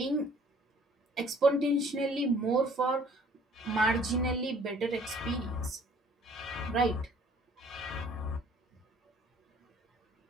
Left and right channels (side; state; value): both; normal; correlation 0.56